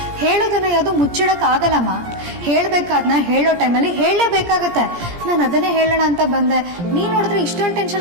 ಹೇಳೋದನ್ನ ಯಾವುದು ಮುಚ್ಚಿಡಕ್ ಆಗಲ್ಲಮ್ಮ. ಹೇಳ್ಬೇಕಾದ್ನ ಹೇಳೋ ಟೈಮಲ್ಲಿ ಹೇಳಲೇಬೇಕಾಗತ್ತೆ. ನಾನು ಅದನ್ನೇ ಹೇಳೋಣ ಅಂತ ಬಂದೆ. ನೀನ್ ನೋಡಿದ್ರೆ ಇಷ್ಟೊಂದು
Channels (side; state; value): left; late; 17 ms